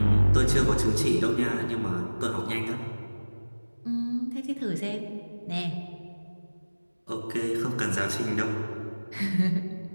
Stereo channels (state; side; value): inverted; both; correlation -1.00